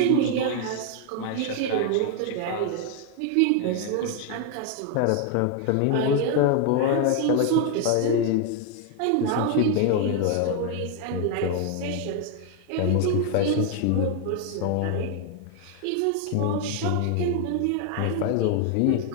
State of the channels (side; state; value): both; different; correlation 0.01